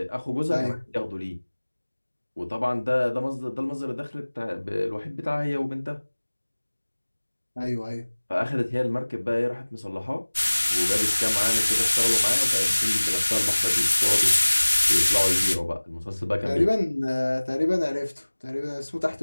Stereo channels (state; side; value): inverted; both; correlation -1.00